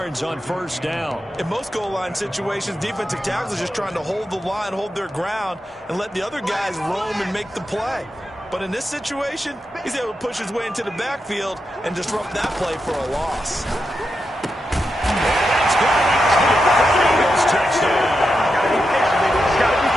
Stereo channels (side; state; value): both; normal; correlation 0.87